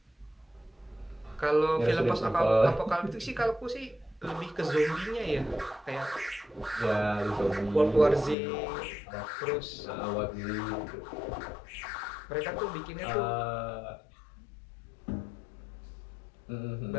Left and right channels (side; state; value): right; drops out; at 8.3 s